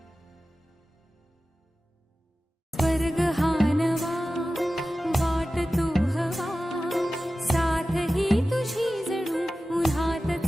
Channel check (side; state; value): both; normal; correlation 0.95